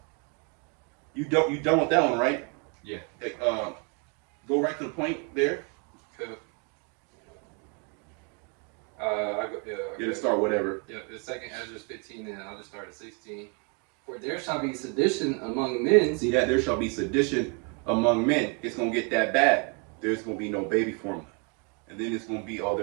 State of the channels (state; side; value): quieter; left; 34.6 dB